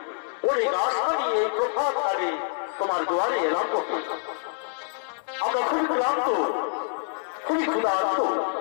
অনেক আশা নিয়ে প্রভাত কালে তোমার দুয়ারে এলাম বটে। আমরা খুবই ক্লান্ত, খুবই ক্ষুধার্ত।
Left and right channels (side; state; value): right; silent; 61 dB below the other